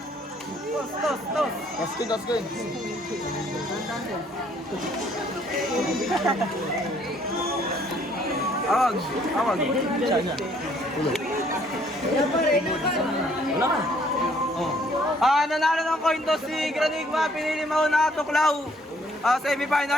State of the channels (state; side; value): normal; both; correlation 0.63